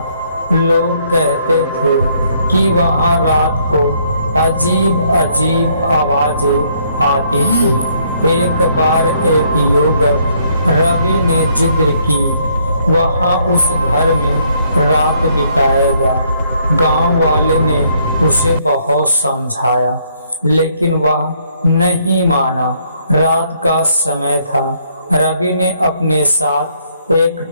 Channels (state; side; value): inverted; both; correlation -0.68